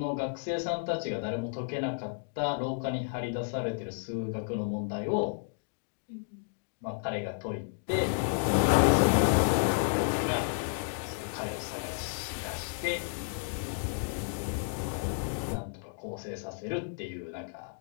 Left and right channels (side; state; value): right; silent; digital silence